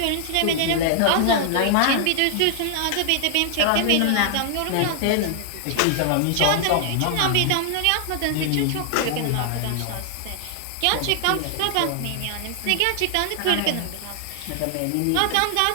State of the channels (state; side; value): different; both; correlation 0.00